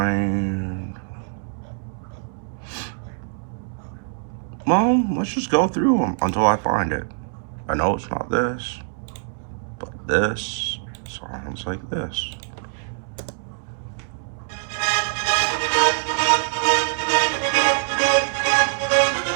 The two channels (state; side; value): silent; left; digital silence